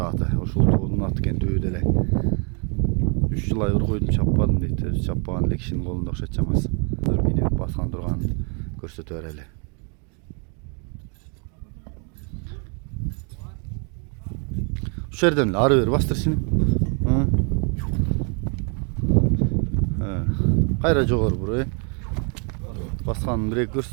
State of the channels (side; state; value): left; quieter; 37.9 dB